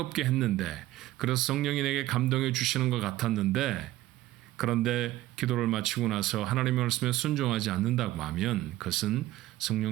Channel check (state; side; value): quieter; left; 15.9 dB